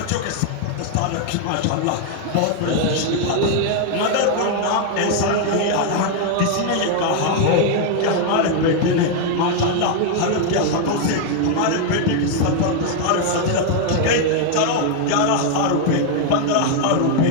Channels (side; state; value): both; different; correlation 0.00